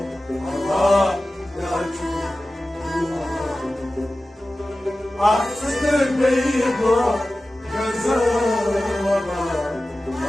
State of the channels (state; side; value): normal; both; correlation 0.96